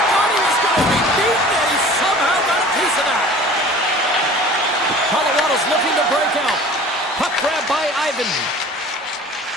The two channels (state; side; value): normal; both; correlation 0.44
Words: thought he was going to be beaten, and he somehow got a piece of that. Colorado's looking to break out. Puck grab by Ivan.